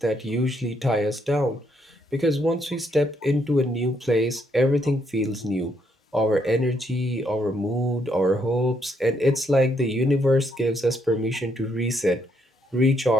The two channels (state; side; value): normal; both; correlation 0.74